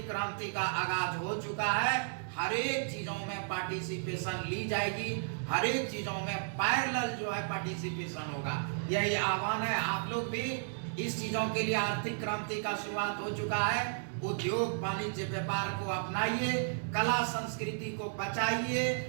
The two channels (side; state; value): left; silent; 55 dB below the other